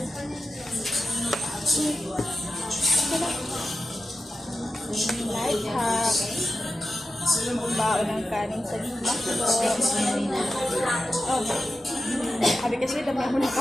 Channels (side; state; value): both; normal; correlation 0.91